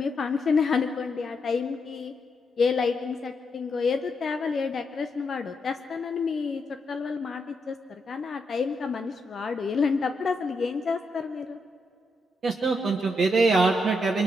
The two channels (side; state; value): both; normal; correlation 0.81